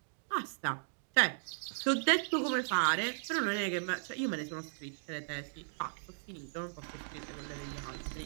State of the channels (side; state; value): left; silent; digital silence